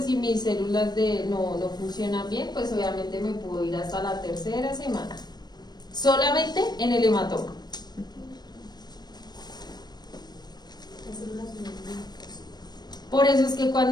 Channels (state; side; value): late; right; 0.20 ms